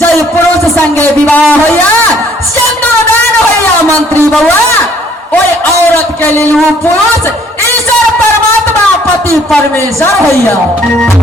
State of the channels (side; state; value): both; normal; correlation 0.61